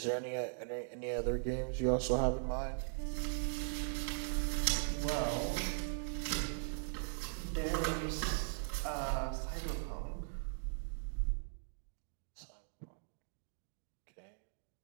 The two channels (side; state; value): left; silent; digital silence